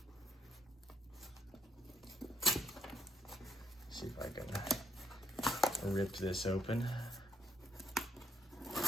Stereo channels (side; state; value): both; normal; correlation 0.70